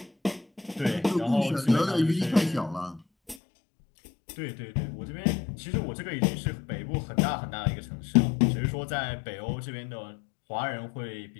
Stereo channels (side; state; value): right; drops out; at 3.4 s